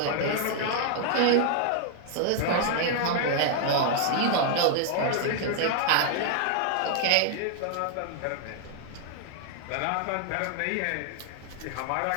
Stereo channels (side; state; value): both; different; correlation 0.00